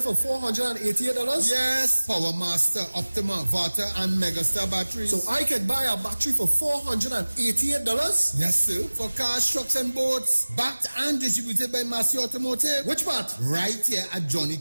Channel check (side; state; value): both; inverted; correlation -1.00